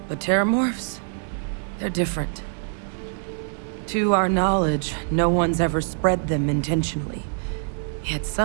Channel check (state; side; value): silent; left; digital silence